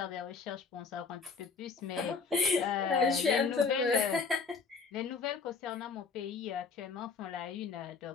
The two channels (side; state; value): right; quieter; 5.1 dB